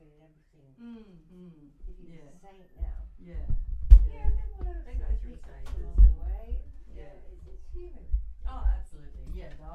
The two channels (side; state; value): both; identical; correlation 1.00